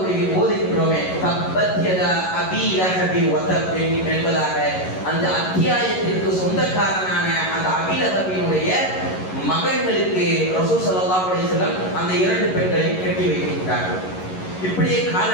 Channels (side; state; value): right; late; 11 ms